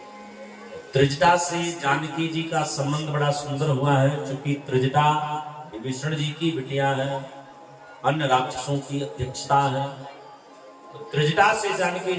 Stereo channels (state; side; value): identical; both; correlation 1.00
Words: त्रिजटा से जानकी जी का संबंध बड़ा सुंदर हुआ है, क्योंकि त्रिजटा विभीषण जी की बिटिया है, अन्य राक्षसों की अध्यक्षता है। तो त्रिजटा से जानकी